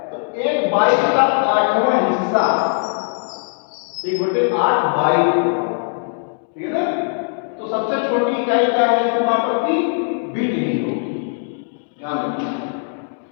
तो 1 बाइट का 8वां हिस्सा 1/8 बाइट। ठीक है ना? तो सबसे छोटी इकाई क्या है इसके मापक की, बिट ही होगी, ध्यान रखिए।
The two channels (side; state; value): right; silent; 66 dB below the other